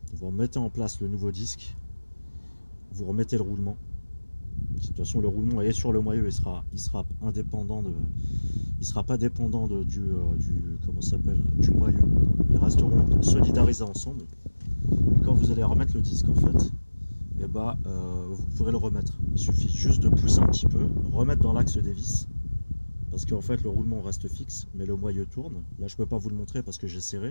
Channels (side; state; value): both; inverted; correlation -1.00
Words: vous remettez en place le nouveau disque, vous remettez le roulement. De toute façon le roulement est sur le moyeu, il sera indépendant il sera pas dépendant du comment ça s'appelle, du moyeu. Ils resteront solidarisés ensemble. Et quand vous allez remettre le disque en fait, vous pourrez le remettre. Il suffit juste de pousser un petit peu, remettre dans l'axe des vis parce qu'en fait le roulement reste fixe, mais le moyeu tourne. Là je peux pas vous le montrer parce que j'ai